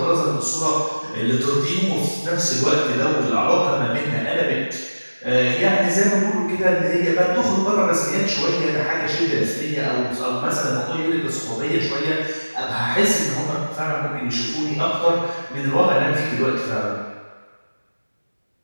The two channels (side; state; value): both; inverted; correlation -1.00